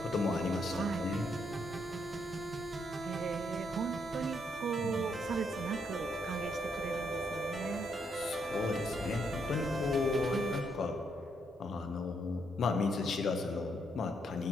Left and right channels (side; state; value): both; normal; correlation 0.75